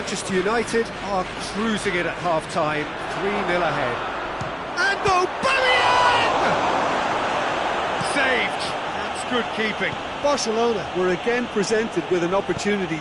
United are cruising it at half-time, 3-0 ahead. And Aubameyang! Saved. That's good keeping. Barcelona were again presented with an opportunity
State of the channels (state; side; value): identical; both; correlation 1.00